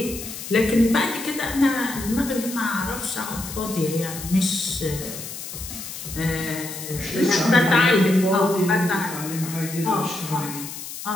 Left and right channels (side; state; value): left; noise; hiss, 10 dB below the sound